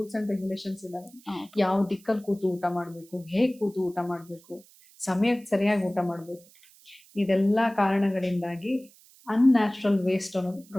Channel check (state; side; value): noise; right; hiss, 26 dB below the sound